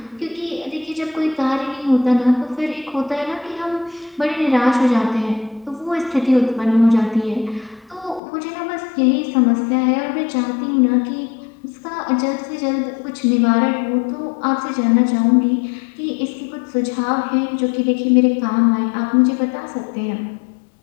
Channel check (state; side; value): drops out; right; at 8.2 s